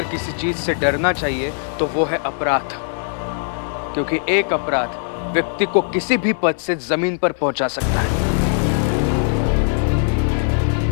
किसी चीज से डरना चाहिए तो वो है अपराध, क्योंकि एक अपराध व्यक्ति को किसी भी पद से जमीन पर पहुंचा सकता है।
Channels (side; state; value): right; silent; digital silence